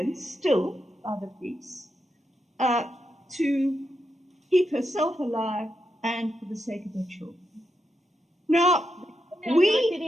still by the police, to keep herself alive and for the sake of her children. Now,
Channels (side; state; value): both; normal; correlation 0.85